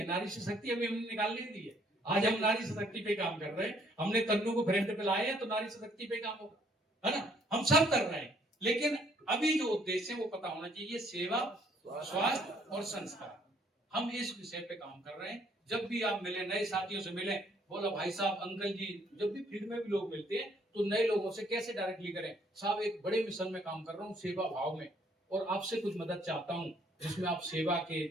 नारी शक्ति अभी हमने निकाल नहीं दी है। आज हम नारी शक्ति पे काम कर रहे हैं, हमने तन्नू को फ्रंट पे लाए हैं, तो नारी शक्ति पे काम होगा, है ना। हम सब कर रहे हैं, लेकिन अभी जो उद्देश्य है वो पता होना चाहिए, सेवा, स्वास्थ्य और संस्कार। हम इस विषय पे काम कर रहे हैं। जब भी आप मिले, नए साथियों से मिले, बोला भाई साहब, अंकल जी, जब भी फील्ड में भी लोग मिलते हैं तो नए लोगों से कैसे डायरेक्टली करें, साहब एक बड़े मिशन में काम कर रहा हूँ, सेवा भाव में, और आपसे कुछ मदद चाहता हूँ, जिसमें आप सेवा के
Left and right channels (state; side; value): normal; both; correlation 0.65